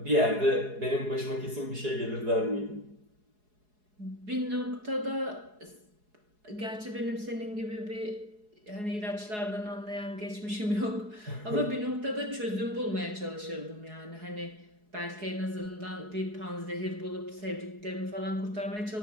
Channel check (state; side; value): late; left; 4.8 ms